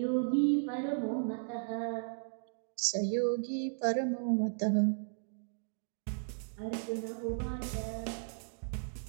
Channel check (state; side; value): silent; left; digital silence